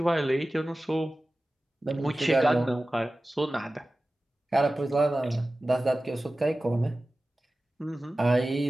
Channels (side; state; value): both; normal; correlation 0.96